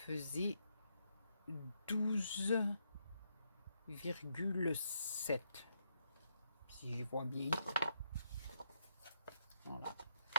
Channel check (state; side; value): inverted; both; correlation -0.78